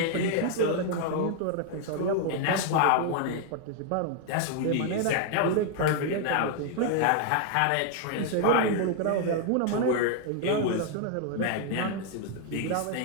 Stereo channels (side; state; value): both; different; correlation 0.00